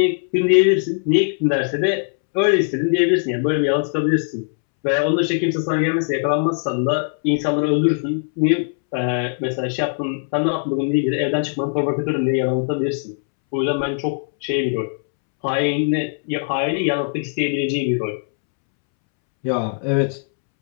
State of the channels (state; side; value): silent; right; 65 dB below the other